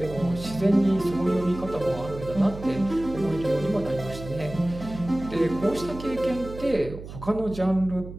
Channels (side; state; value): right; noise; hum, 12 dB below the sound